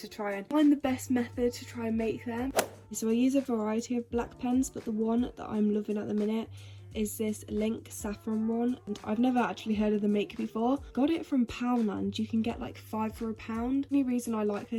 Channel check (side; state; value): both; identical; correlation 1.00